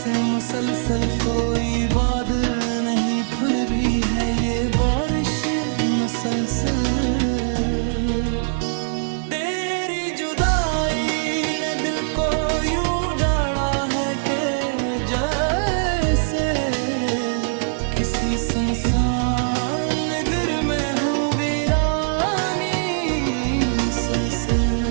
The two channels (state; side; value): silent; left; digital silence